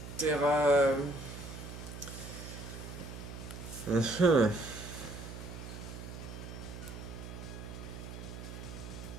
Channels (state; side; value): noise; right; hum, 10 dB below the sound